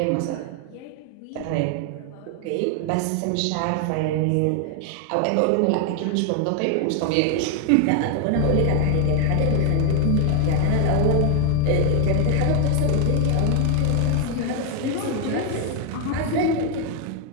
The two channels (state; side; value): different; both; correlation 0.00